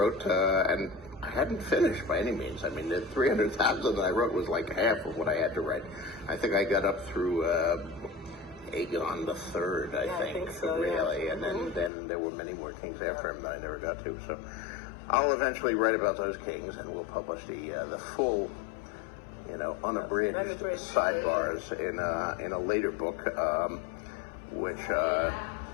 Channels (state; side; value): drops out; right; at 11.9 s